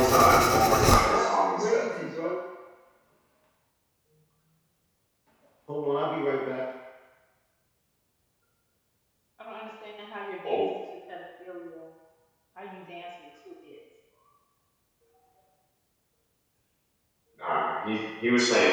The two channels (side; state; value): both; identical; correlation 1.00